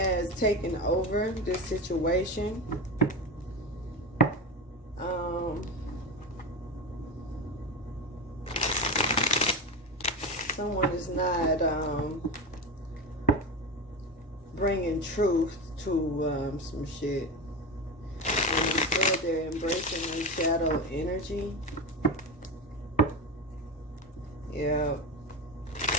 taken over this situation. Someone is not bringing truth to some shit. And instead they're embracing the shadow energy. Yeah.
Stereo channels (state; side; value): normal; both; correlation 0.21